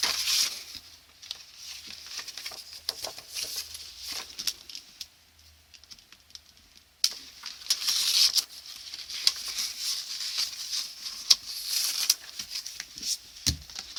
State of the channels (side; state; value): both; identical; correlation 1.00